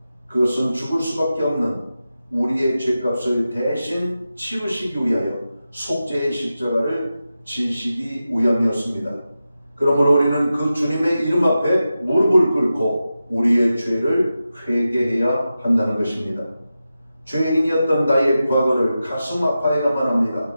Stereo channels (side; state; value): both; inverted; correlation -0.92